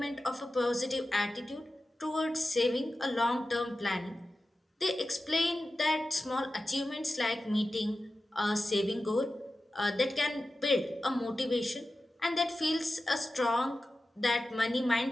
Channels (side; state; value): both; normal; correlation 0.94